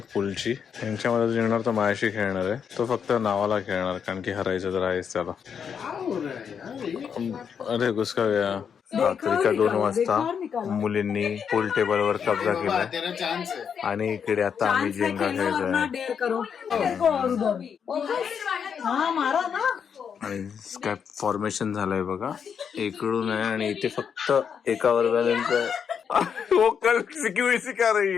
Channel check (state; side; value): quieter; right; 7.2 dB